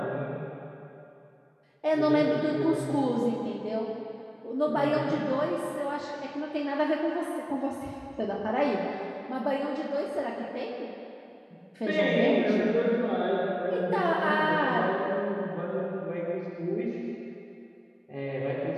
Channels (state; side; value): identical; both; correlation 1.00